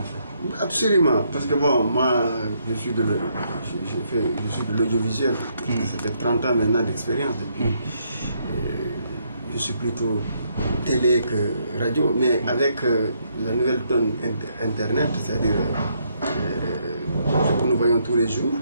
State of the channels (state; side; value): inverted; both; correlation -0.73